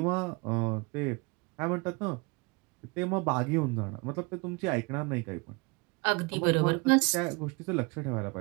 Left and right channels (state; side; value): quieter; left; 28.2 dB